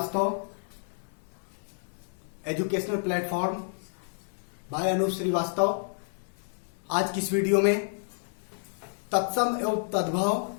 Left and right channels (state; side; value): silent; right; digital silence